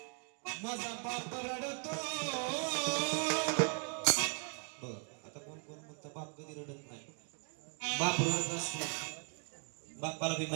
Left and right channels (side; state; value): left; quieter; 39.9 dB